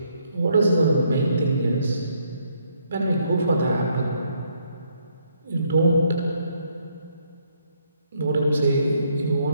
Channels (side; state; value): both; inverted; correlation -0.71